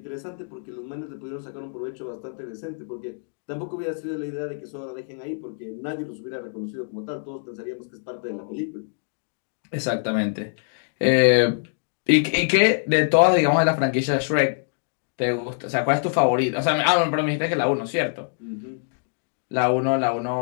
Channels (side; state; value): right; silent; digital silence